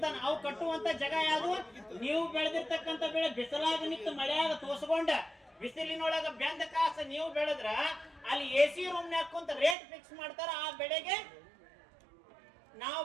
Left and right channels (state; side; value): drops out; left; at 9.8 s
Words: ಅವು ಕಟ್ಟುವಂತ ಜಾಗ ಯಾವ್ದು? ನೀವು ಬೆಳೆದಿರ್ತಕ್ಕಂತ ಬೆಳೆ ಬಿಸಿಲಾಗ ನಿಂತು ಮಳೆಯಾಗ ತೋಸ್ಕೊಂಡ ಬಿಸಿಲಿನೊಳಗ ಬೆಂದ ಕಾಸ ನೀವು ಬೆಳೆದ್ರ ಅಲ್ಲಿ AC ರೂಮ್ ನಾಗ ಕುಂತ ರೇಟ್ ಫಿಕ್ಸ್ ಮಾಡ್ತಾರ. ಆ ಬೆಳೆಗೆ ನಾವು